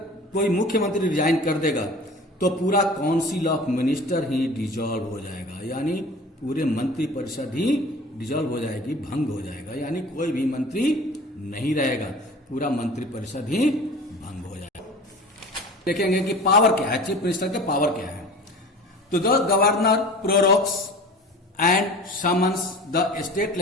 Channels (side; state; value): both; normal; correlation 0.40